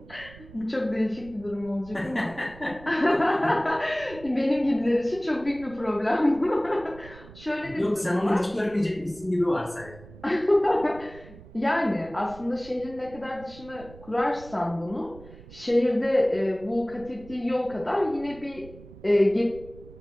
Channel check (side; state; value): right; noise; rumble, 19 dB below the sound